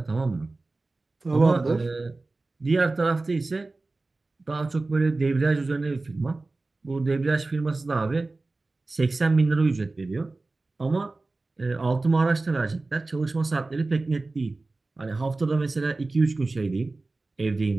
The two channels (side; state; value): left; quieter; 3.3 dB